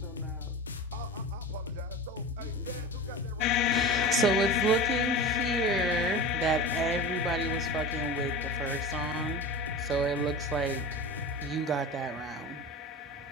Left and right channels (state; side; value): normal; both; correlation 0.31